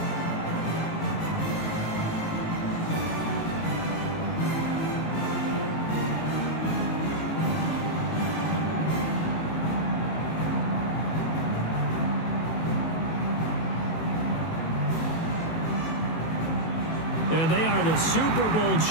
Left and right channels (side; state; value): right; late; 18 ms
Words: And they are the Super Bowl